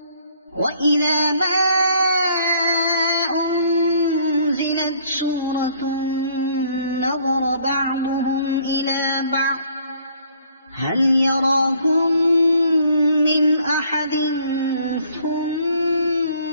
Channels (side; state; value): both; inverted; correlation -0.61